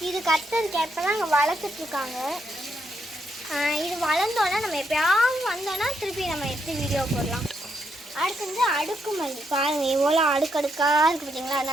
இது கத்தரிக்காய் இப்போலாம் அங்கே வளர்த்துட்ருக்காங்க. இது வளர்ந்தோன்னா நம்ம எப்போயாவது வந்தோன்னா திருப்பி நம்ம எடுத்து வீடியோ போடலாம். அடுத்து வந்து அடுக்குமல்லி பாருங்கள் எவ்வளோ அடுக்கடுக்காக இருக்குது பார்த்தீங்களா?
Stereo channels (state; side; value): normal; both; correlation 0.78